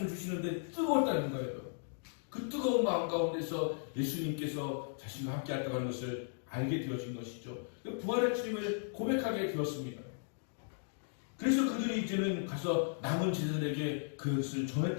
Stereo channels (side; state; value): right; silent; digital silence